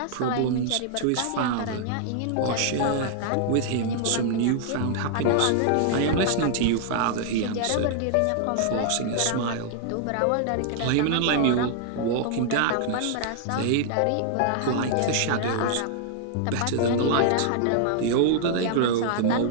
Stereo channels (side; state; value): both; different; correlation -0.01